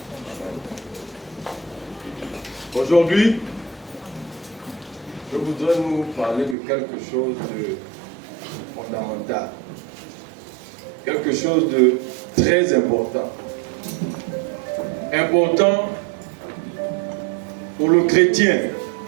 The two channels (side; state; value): left; drops out; at 6.6 s